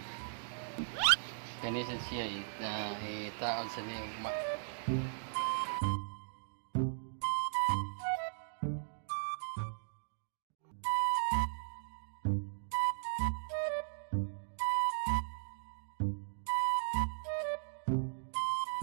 Kanisan siya taon sa niyo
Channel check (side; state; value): left; silent; digital silence